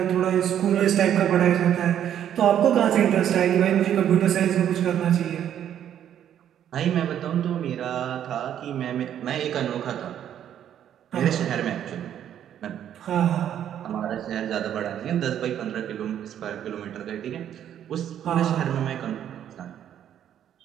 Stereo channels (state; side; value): quieter; left; 10.1 dB